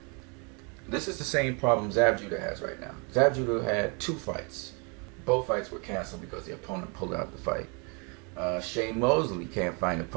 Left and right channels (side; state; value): left; quieter; 33.9 dB